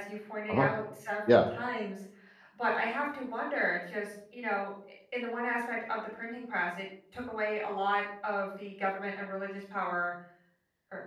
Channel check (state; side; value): identical; both; correlation 1.00